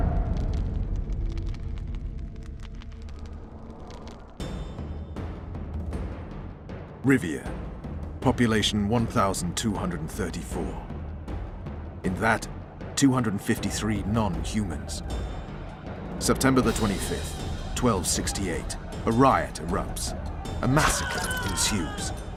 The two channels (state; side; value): identical; both; correlation 1.00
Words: Rivia. Population 1,234. In that, 253 non-humans. September the 25th, 1268. A riot erupts. A massacre ensues.